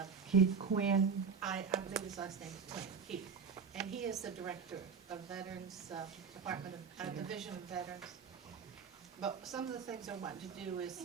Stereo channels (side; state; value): left; quieter; 5.9 dB